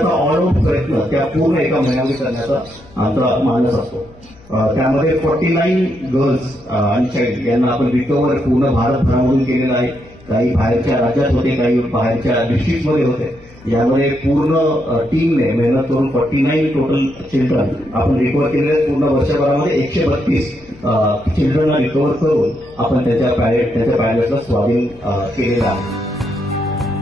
ऑल आउट प्रयत्न त्या पूर्ण एका महिन्यामध्ये करण्याचा आमचा मानस असतो. त्यामध्ये 49 गर्ल्स आणि चाइल्ड यांना आपण रिकव्हर पूर्ण भारतभरामधून केलेलं आहे. काही बाहेरच्या राज्यात होते, काही बाहेरच्या डिस्ट्रिक्टमध्ये होते. यामध्ये पूर्ण टीमने मेहनत करून 49 टोटल चिल्ड्रन आपण रिकव्हर केलेले आहेत. पूर्ण वर्षभरामध्ये 132 चिल्ड्रनला रिकव्हर करून आपण त्यांच्या पॅलेटला स्वाधीन केलेलं आहे.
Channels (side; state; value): left; noise; hum, 25 dB below the sound